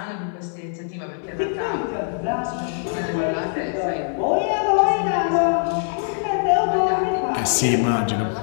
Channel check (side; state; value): right; silent; digital silence